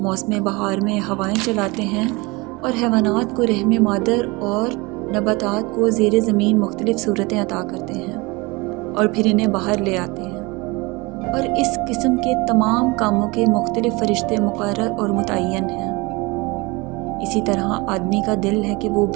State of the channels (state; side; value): quieter; left; 24.9 dB